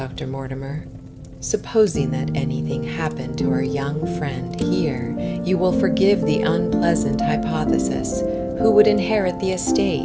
Mortimer. Supposing that anything happened to our young friend here, you will forgive the unpleasant hypothesis. Who would inherit the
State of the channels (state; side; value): identical; both; correlation 1.00